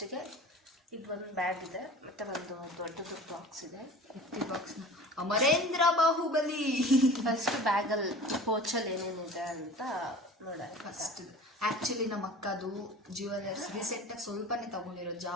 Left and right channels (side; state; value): both; normal; correlation 0.40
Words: ಇದು ಒಂದು ಬ್ಯಾಗ್ ಇದೆ, ಮತ್ತೆ ಒಂದು ದೊಡ್ಡದು ಬಾಕ್ಸ್ ಇದೆ. ಬಾಕ್ಸ್ನ ಅಮರೇಂದ್ರ ಬಾಹುಬಲಿ. ಫಸ್ಟ್ ಬ್ಯಾಗಲ್ಲಿ ಪೋಚಲ್ಲಿ ಏನೇನಿದೆ ಅಂತ ನೋಡೋಣ. ಫಸ್ಟ್ ಆ್ಯಕ್ಚುಲಿ ನಮ್ಮ ಅಕ್ಕದು ಜ್ಯುವೆಲರ್ಸ್ ರೀಸೆಂಟಾಗಿ ಸ್ವಲ್ಪನೇ ತಗೊಂಡಿರೋದು,